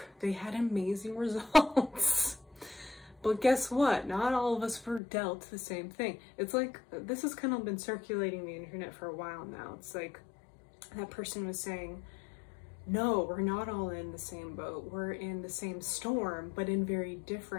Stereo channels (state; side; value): drops out; right; at 5.0 s